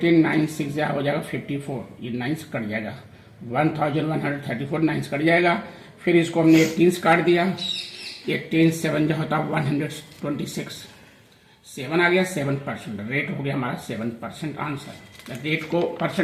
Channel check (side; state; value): both; identical; correlation 1.00